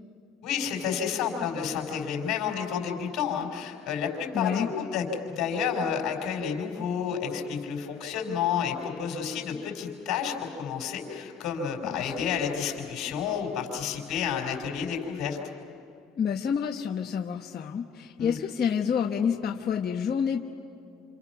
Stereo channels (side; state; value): right; quieter; 7.0 dB